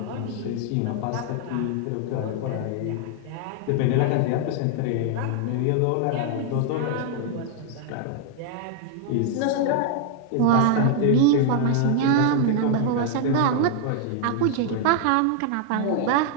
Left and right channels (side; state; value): both; different; correlation 0.00